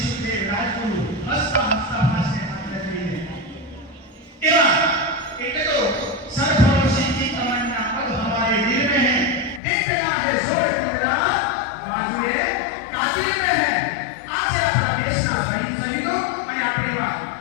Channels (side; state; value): right; drops out; at 9.6 s